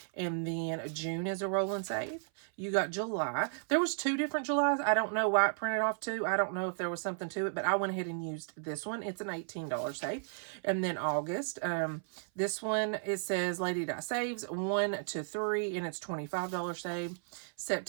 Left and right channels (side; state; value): left; silent; 55 dB below the other